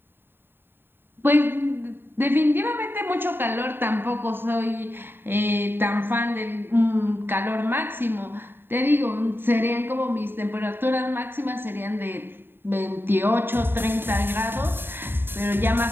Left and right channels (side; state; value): left; late; 0.10 ms